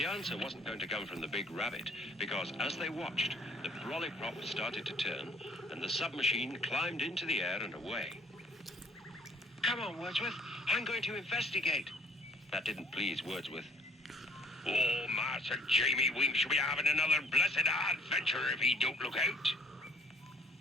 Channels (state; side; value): normal; both; correlation 0.58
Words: answer wasn't going to come from the big rabbit, because as they watched, the brolly prop started to turn, and the submachine climbed into the air and away. Come on, Wordsworth. I'm going to investigate. That didn't please Wordsworth. Oh, Master Jamie Wink shall be having another blessed adventure if he don't look out.